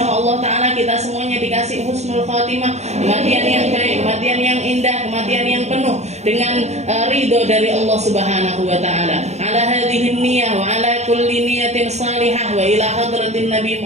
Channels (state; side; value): late; left; 0.32 ms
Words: Allah Ta'ala kita semuanya dikasih husnul khatimah, kematian yang baik, kematian yang indah, kematian yang penuh dengan ridho dari Allah Subhanahu wa Ta'ala. Ala hadhihi niyah wa ala kulli niyatin salihah wa ila hadratin Nabi